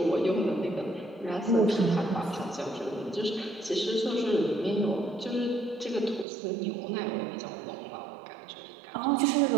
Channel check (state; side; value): drops out; left; at 6.2 s